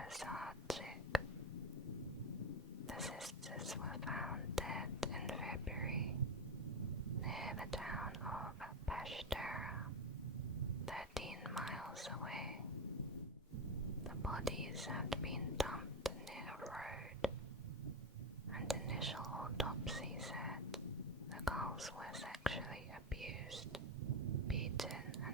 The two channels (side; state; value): both; normal; correlation 0.14